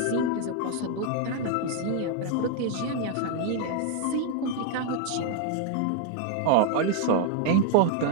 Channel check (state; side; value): different; both; correlation 0.01